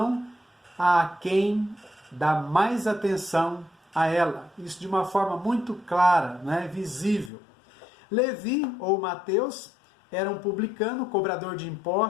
a quem dá mais atenção a ela. Isso de uma forma muito clara, visível. Levi, ou Mateus, era um publicano, cobrador de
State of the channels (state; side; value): drops out; right; at 7.3 s